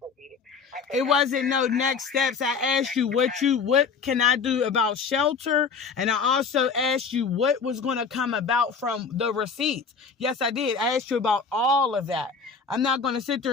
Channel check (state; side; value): quieter; right; 5.4 dB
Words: be, it wasn't no next steps. I asked you what can I do about shelter, and I also asked you what was going to come about from the receipts. Yes, I did. I asked you about all of that. I'm not going to sit